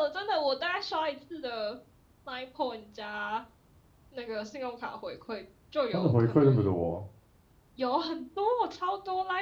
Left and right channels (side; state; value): both; identical; correlation 1.00